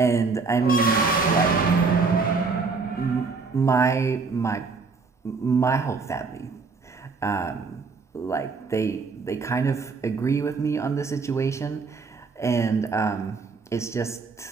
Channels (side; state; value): left; quieter; 4.6 dB